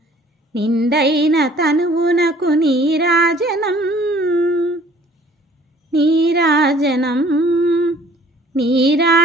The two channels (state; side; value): normal; both; correlation 0.55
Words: నిండైన తనువునకు నీరాజనం నీరాజనం